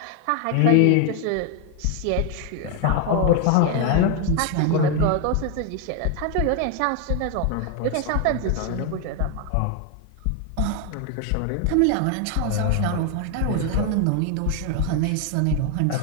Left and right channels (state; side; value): different; both; correlation 0.01